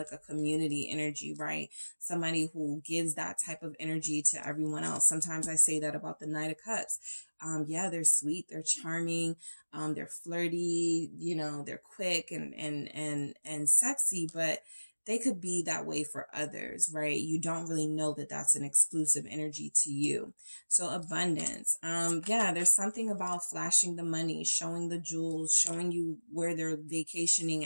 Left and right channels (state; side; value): inverted; both; correlation -1.00